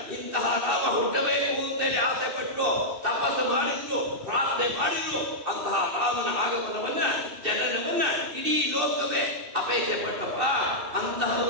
ಇಂತಹ ರಾಮ ಹುಟ್ಟಬೇಕು ಅಂತೇಳಿ ಆಸೆ ಪಟ್ಟರು ತಪಸ್ಸು ಮಾಡಿದ್ರು ಪ್ರಾರ್ಥನೆ ಮಾಡಿದ್ರು ಅಂತಹ ರಾಮನ ಆಗಮನವನ್ನ ಜನನವನ್ನ ಇಡೀ ಲೋಕವೇ ಅಪೇಕ್ಷೆ ಪಟ್ಟಪ್ಪ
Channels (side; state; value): left; late; 2.6 ms